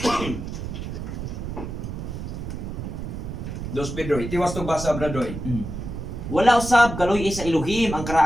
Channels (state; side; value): noise; right; rumble, 6 dB below the sound